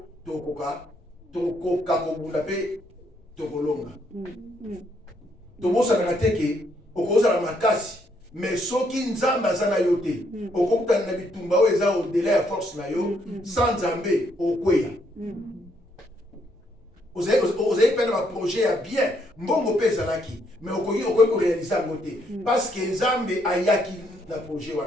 to koka kobunda pe to kolonga. To bosa na teke okoza na makasi mais soki Nzambe azana yote okokuta na bitumba oyo eza au-delà ya force na yo sans Nzambe okweya. Vous avez fait un projet à bien, mbongo pe ezalaki, mais okoki réaliser à côté parce que Nzambe ayaki na projet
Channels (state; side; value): normal; both; correlation 0.72